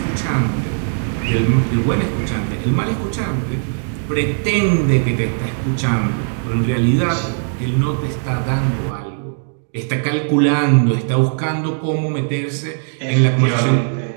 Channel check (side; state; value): left; silent; digital silence